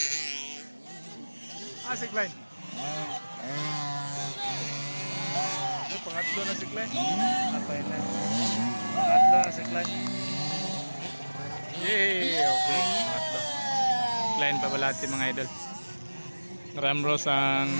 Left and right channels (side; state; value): both; inverted; correlation -1.00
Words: Si Klein. Pangatlo na si Klein. Atay na. Pangatlo na si Klein. Yay! Okay. Pangatlo. Klein Babalati mga idol. Ramros ang